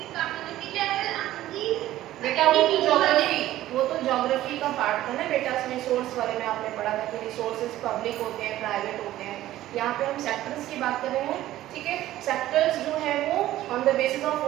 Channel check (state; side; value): quieter; left; 14.4 dB